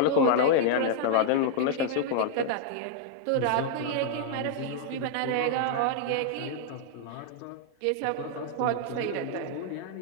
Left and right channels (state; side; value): different; both; correlation -0.01